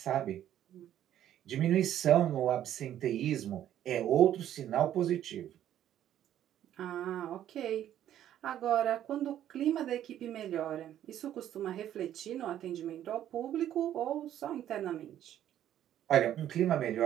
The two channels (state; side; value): quieter; left; 11.4 dB